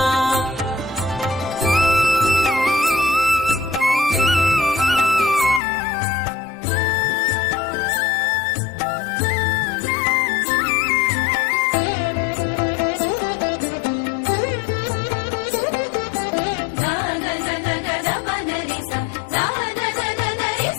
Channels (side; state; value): right; drops out; at 5.6 s